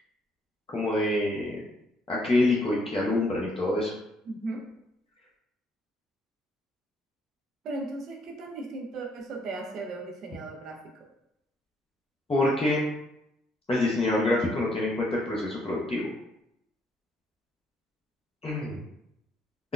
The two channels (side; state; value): both; normal; correlation 0.70